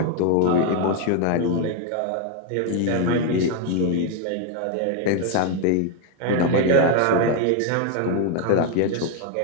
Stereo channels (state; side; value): different; both; correlation 0.01